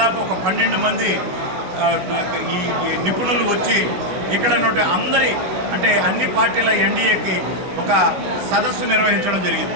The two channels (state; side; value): late; left; 16 ms